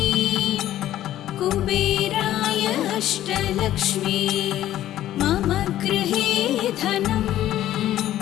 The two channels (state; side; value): quieter; right; 13.0 dB